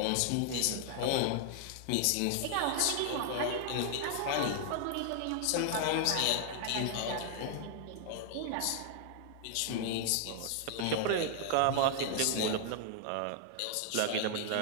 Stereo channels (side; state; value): both; different; correlation -0.01